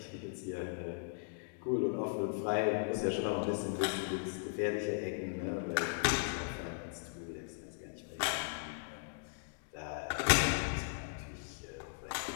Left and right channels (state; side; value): silent; right; digital silence